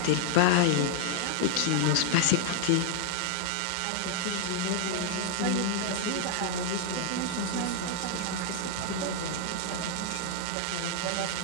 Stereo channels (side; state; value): both; different; correlation 0.00